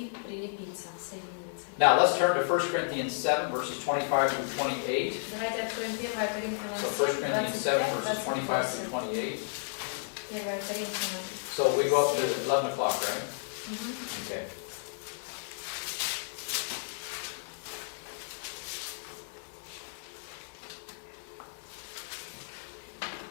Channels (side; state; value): right; silent; digital silence